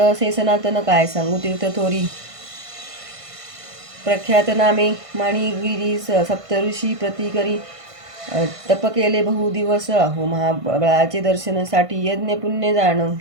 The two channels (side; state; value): left; late; 1.5 ms